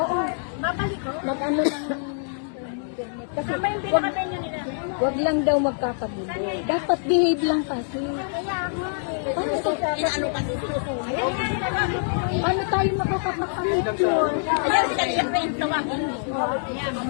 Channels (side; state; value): right; silent; digital silence